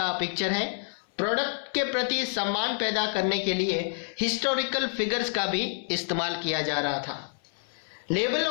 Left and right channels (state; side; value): silent; right; 59 dB below the other